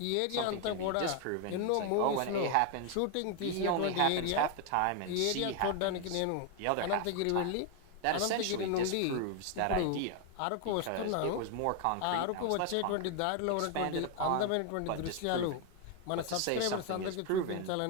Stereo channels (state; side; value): different; both; correlation 0.01